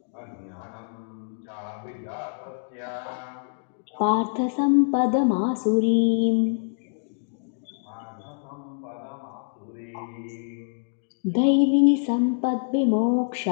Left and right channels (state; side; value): silent; right; digital silence